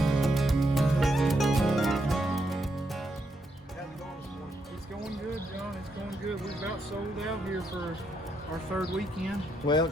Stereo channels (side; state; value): both; normal; correlation 0.79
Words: It's going good, John. It's going good. We've about sold out here for our third weekend. Well,